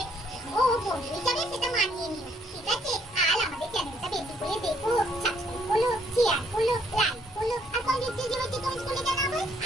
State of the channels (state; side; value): normal; both; correlation 0.68